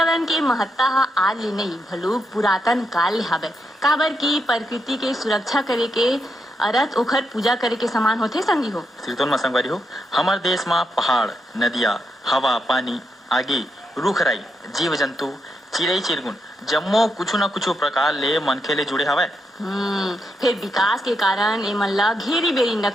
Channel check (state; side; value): normal; both; correlation 0.82